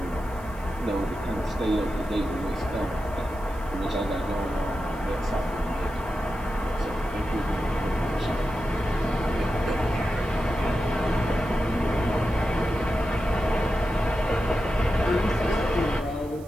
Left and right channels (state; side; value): noise; right; hiss, 25 dB below the sound